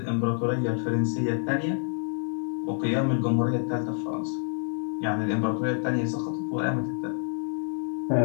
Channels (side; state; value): right; silent; 57 dB below the other